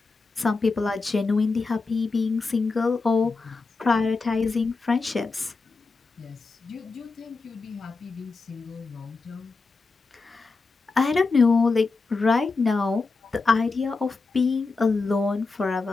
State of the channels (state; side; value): quieter; right; 4.0 dB